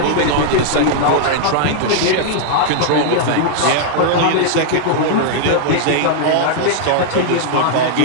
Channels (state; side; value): different; both; correlation -0.01